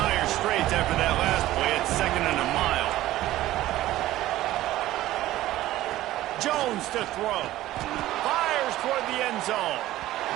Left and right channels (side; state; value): left; quieter; 15.3 dB